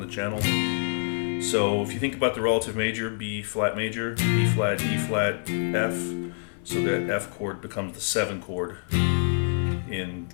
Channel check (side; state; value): right; silent; 57 dB below the other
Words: the channel. So if you think about the relative major, B flat major, E flat, E flat, F, so that F chord becomes the 7 chord in the